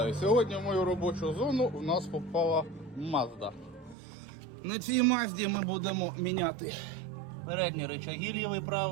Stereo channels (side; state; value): left; drops out; at 4.0 s